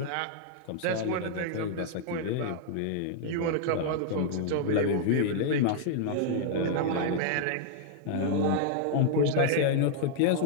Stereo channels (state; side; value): different; both; correlation -0.01